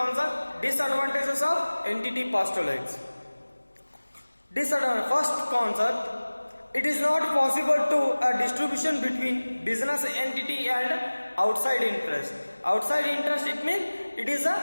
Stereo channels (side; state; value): both; inverted; correlation -1.00